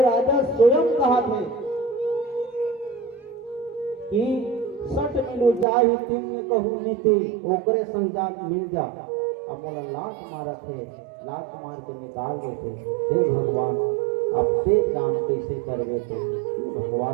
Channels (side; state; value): left; drops out; at 5.7 s